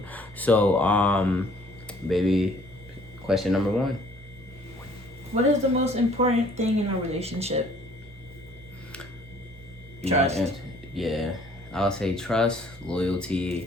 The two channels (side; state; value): both; normal; correlation 0.57